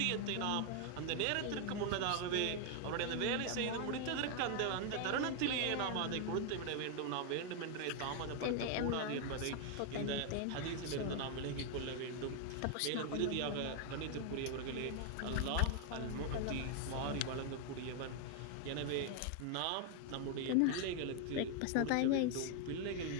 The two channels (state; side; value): different; both; correlation 0.00